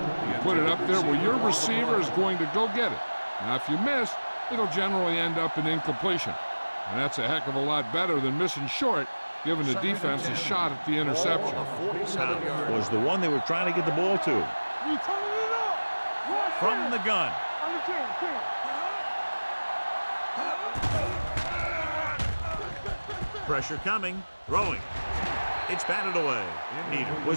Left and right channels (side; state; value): both; inverted; correlation -1.00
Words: You put it up there where your receiver is going to go get it. Now, if you miss, it'll generally end up in incompletion. And that's a heck of a lot better than missing short, giving the defense a shot at the interception. That was the one they were trying to get the ball to. You turning it up. From the gun. On the 10. Pressure coming. Throwing. It's batted away. Peter